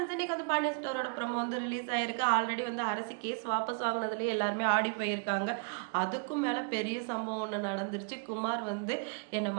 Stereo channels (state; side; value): quieter; left; 35.2 dB